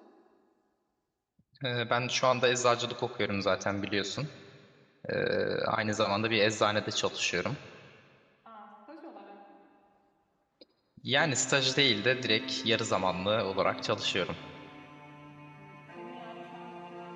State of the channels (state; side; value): identical; both; correlation 1.00